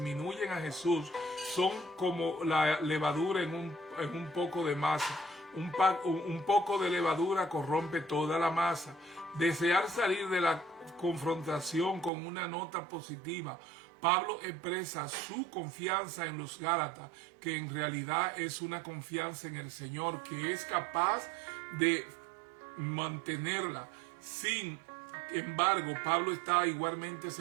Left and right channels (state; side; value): drops out; left; at 12.1 s